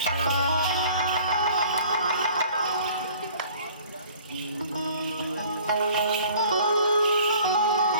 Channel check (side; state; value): both; inverted; correlation -0.50